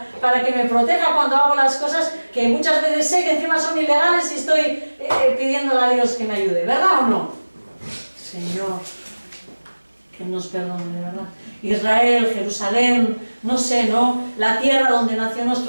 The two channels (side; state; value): both; inverted; correlation -1.00